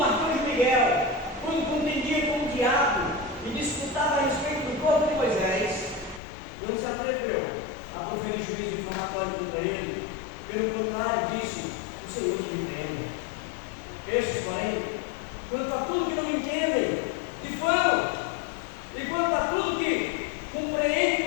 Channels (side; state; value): right; drops out; at 6.2 s